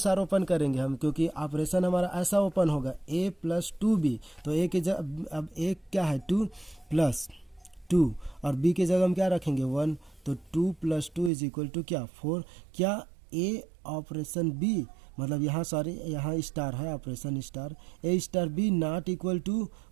ओपन करेंगे हम, क्योंकि ऑपरेशन हमारा ऐसा ओपन होगा ए प्लस 2b, तो ए की जगह अब ए क्या है 2 प्लस 2 और बी की जगह हम क्या रखेंगे 1, तो 2 प्लस 2 इज इक्वल टू क्या 4। क्या ए ऑपरेशन बी मतलब यहाँ सॉरी यहाँ स्टार है operation star, A star B not equal to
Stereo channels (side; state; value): left; drops out; at 11.3 s